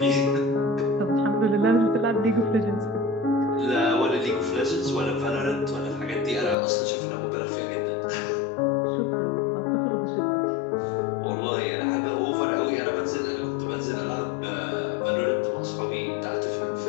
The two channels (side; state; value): right; drops out; at 6.6 s